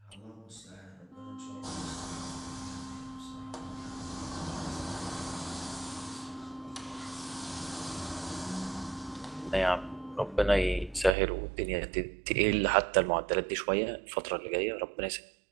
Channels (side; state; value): left; drops out; at 11.1 s